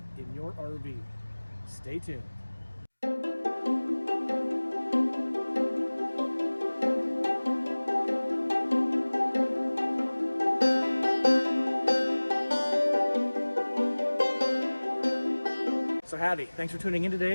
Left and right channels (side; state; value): both; inverted; correlation -1.00